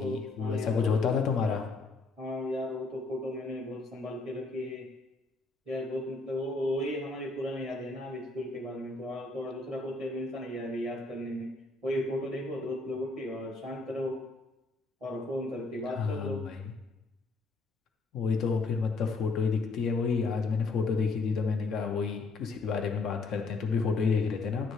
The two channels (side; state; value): right; quieter; 3.7 dB